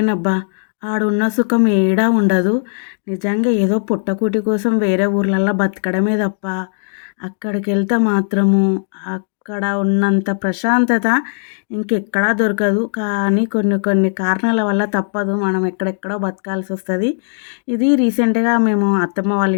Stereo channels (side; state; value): right; silent; digital silence